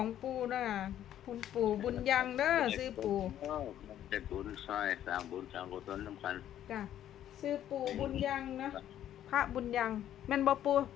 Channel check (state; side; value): quieter; right; 11.3 dB